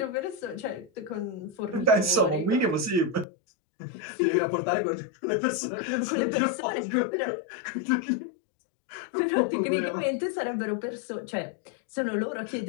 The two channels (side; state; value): right; drops out; at 3.2 s